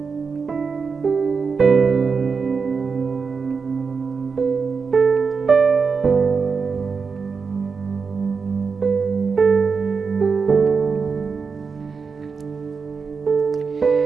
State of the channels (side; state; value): left; quieter; 5.3 dB